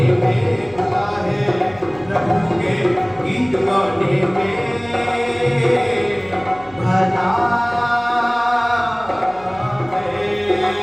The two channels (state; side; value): noise; right; hum, 25 dB below the sound